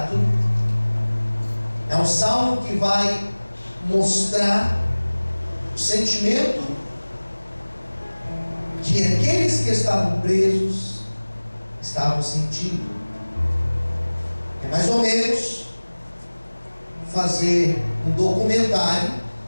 É um salmo que vai mostrar o sentimento que aqueles que estavam presos estavam sentindo. É mais ou menos fazer um documentário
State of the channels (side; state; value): both; inverted; correlation -1.00